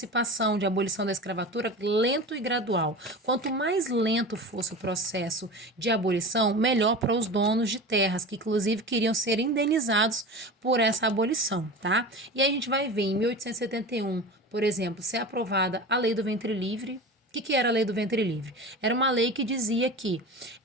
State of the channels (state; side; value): normal; both; correlation 0.32